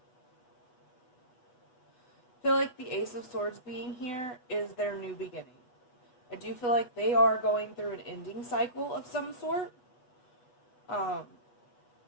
I feel like the Ace of Swords being here is their new beginning. I do feel like they are going through an ending cycle of some sort. Like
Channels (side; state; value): right; late; 8.2 ms